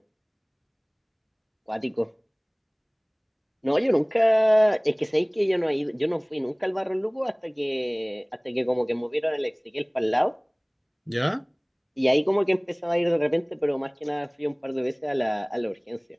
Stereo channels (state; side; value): identical; both; correlation 1.00